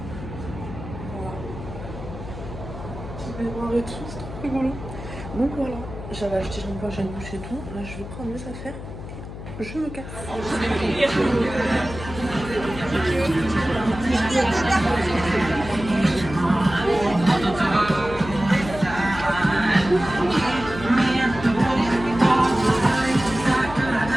Voilà. Petit baignoire et tout, c'est trop rigolo. Donc voilà, j'avais acheté shampoing, j'ai une douche et tout. Là je vais prendre mes affaires et je me casse.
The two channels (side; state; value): left; noise; hum, 11 dB below the sound